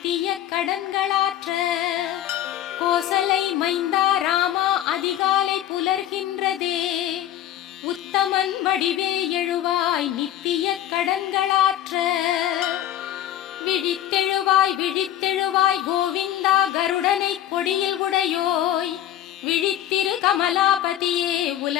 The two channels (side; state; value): right; quieter; 12.0 dB